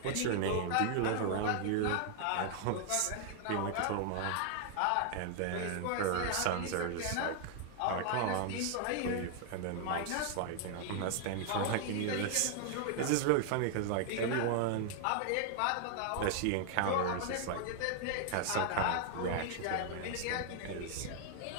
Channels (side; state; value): both; different; correlation 0.00